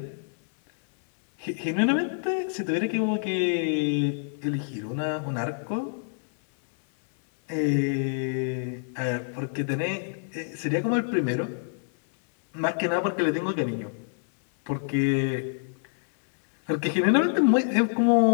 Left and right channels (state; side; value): silent; right; 61 dB below the other